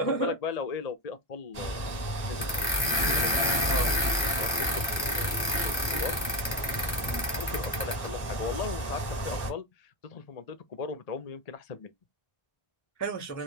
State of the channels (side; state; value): right; late; 1.2 ms